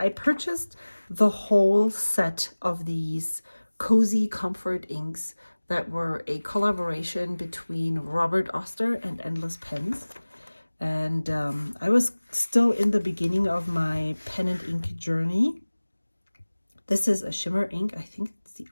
purchased the whole set of these Cozy Comfort inks that were a collaboration between Robert Oster and Endless Pens. And I was still in the beginning of my pen and ink journey. This is a shimmer ink. I think it's the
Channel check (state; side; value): inverted; both; correlation -1.00